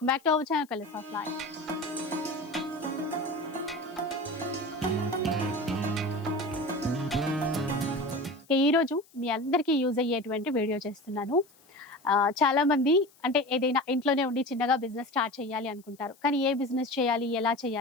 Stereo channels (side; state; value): left; noise; hiss, 29 dB below the sound